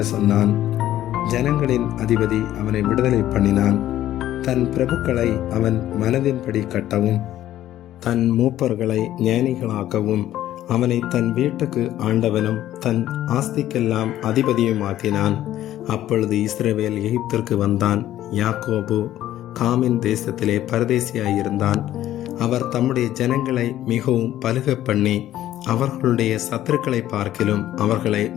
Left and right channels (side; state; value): right; quieter; 13.0 dB